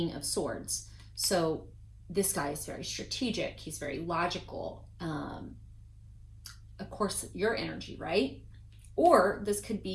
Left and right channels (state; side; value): identical; both; correlation 1.00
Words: of Swords. So this guy is very strategic. He's very logical. Of course, your energy, right? Or this could